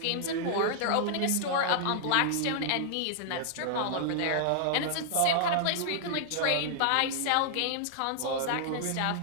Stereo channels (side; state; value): both; different; correlation -0.01